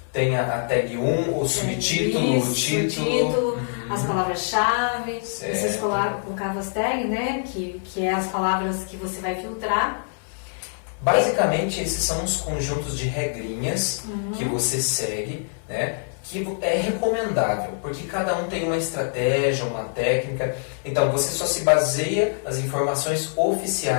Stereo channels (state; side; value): silent; right; 62 dB below the other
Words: Tem a tag 1, o subtítulo, o título, as palavras-chave. Vocês colocavam as tags, né? Que é as palavras que você vai filtrar. Basicamente, esses são os conjuntos de regrinhas que você segue, né? Que é recomendável, porque cada um tem uma estratégia, uma técnica. Então, você só se baseia nas informações